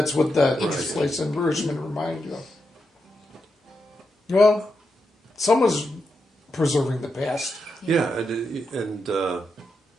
what that place in Richmond reminded you of. Well, someone's preserving the past. Yeah, and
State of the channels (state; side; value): normal; both; correlation 0.85